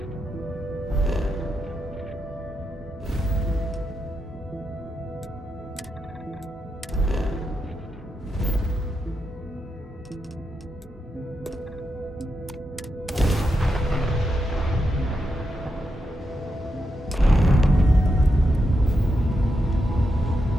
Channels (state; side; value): normal; both; correlation 0.85